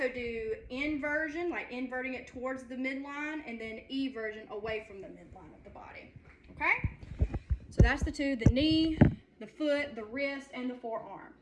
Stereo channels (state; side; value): identical; both; correlation 1.00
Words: do inversion, like inverting it towards the midline, and then eversion away from the midline of the body. Okay? So that's the 2, the knee, the foot, the wrist, and the forearm.